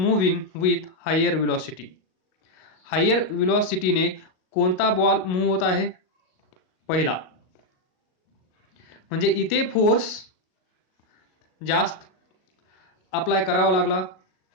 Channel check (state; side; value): late; right; 38 ms